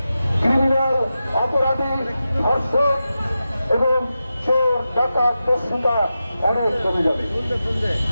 ক্রিমিনাল, অপরাধী, ধর্ষক এবং চোর, ডাকাত, দস্যুতা অনেক কমে যাবে।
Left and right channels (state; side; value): inverted; both; correlation -0.91